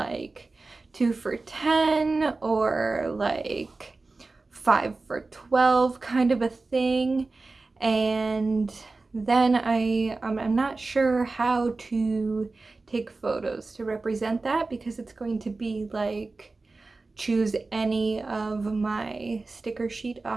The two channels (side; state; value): left; quieter; 3.6 dB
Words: 2 for 10 or like 5 for 12 kind of a thing. And then I'm not sure how to take photos to represent that, because it's going to be like choose any of my sticker sheet